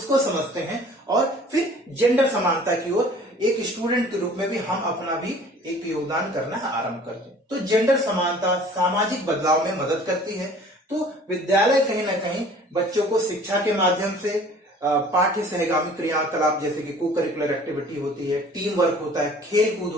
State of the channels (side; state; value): both; normal; correlation 0.50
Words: समझते हैं और फिर जेंडर समानता की ओर एक स्टूडेंट के रूप में भी हम अपना भी एक योगदान करना आरंभ करते हैं। तो जेंडर समानता सामाजिक बदलाव में मदद करती है। तो विद्यालय कहीं ना कहीं बच्चों को शिक्षा के माध्यम से पाठ्य सहगामी क्रियाकलाप जैसे कि को करिकुलर एक्टिविटी होती है, टीम वर्क होता है, खेल कूद